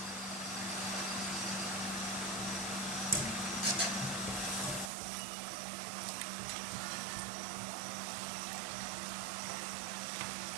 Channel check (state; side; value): drops out; left; at 4.9 s